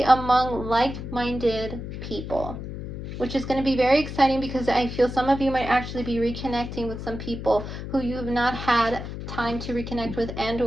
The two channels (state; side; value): noise; left; hum, 8 dB below the sound